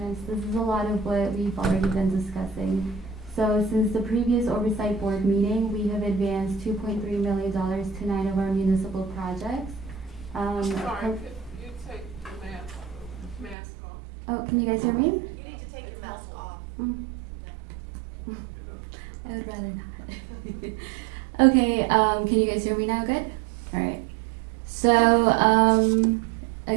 this is a lot of what we've already been discussing. So since the previous Oversight Board meeting, we have advanced $2.3 million to 9 of our municipal projects. Sorry, could you take the mask off? Oh, can you guys hear me? You need to take your mask off. I would rather not. Okay, can you guys hear me now? Good? All right. So,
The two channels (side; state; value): left; drops out; at 13.6 s